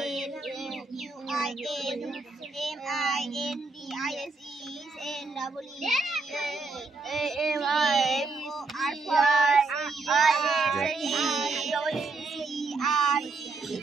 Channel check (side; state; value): left; quieter; 3.8 dB